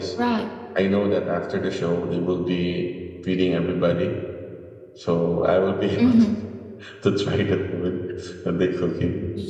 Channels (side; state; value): both; identical; correlation 1.00